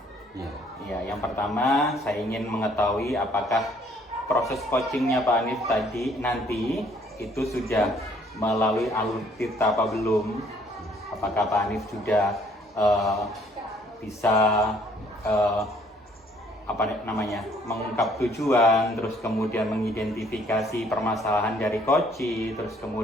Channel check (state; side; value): normal; both; correlation 0.62